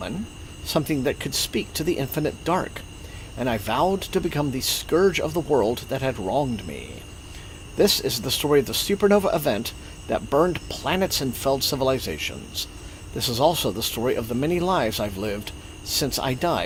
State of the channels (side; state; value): both; identical; correlation 1.00